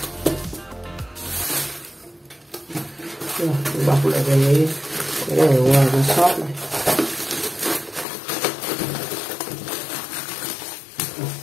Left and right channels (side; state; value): right; drops out; at 8.1 s